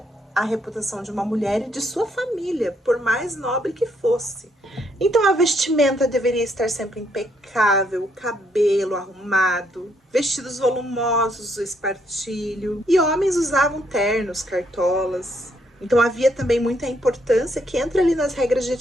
a reputação de uma mulher e de sua família, por mais nobre que fosse. Então a vestimenta deveria estar sempre impecável, o cabelo arrumado, vestidos volumosos, o espartilho, e homens usavam ternos, cartolas. Então havia também muita importância que entra ali nas regras de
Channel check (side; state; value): both; normal; correlation 0.72